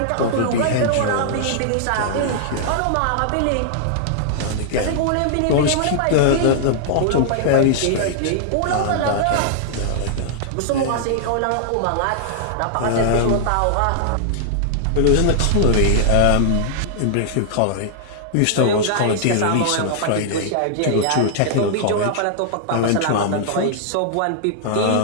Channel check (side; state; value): both; different; correlation -0.01